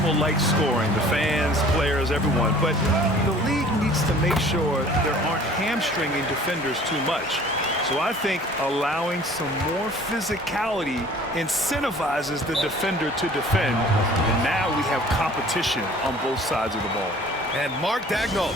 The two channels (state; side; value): normal; both; correlation 0.50